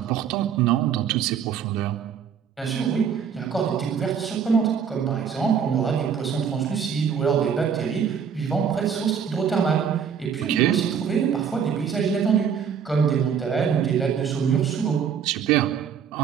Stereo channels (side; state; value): left; quieter; 7.4 dB